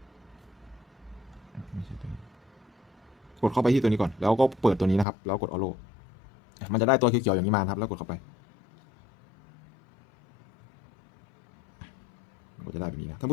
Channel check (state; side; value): drops out; right; at 5.1 s